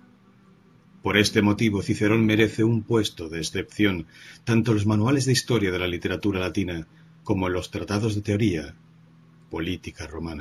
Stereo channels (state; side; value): identical; both; correlation 1.00